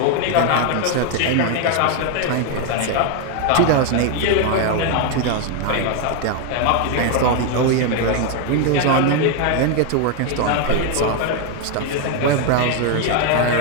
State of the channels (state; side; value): different; both; correlation 0.01